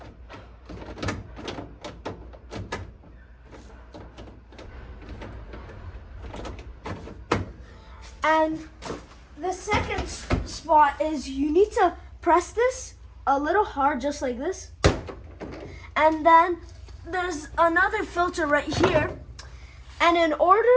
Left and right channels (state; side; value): identical; both; correlation 1.00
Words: And the second spot is you need to press this a little hard, just like this. And then there's another filter right here. And in order